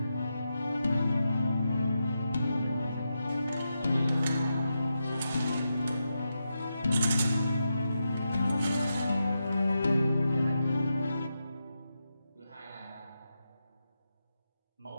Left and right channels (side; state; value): both; inverted; correlation -0.87